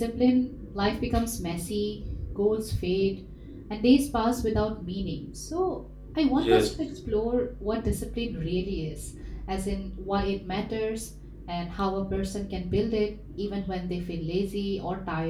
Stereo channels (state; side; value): identical; both; correlation 1.00